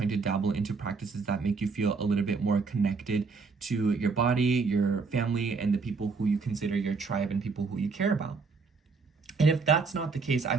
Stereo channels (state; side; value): quieter; left; 4.6 dB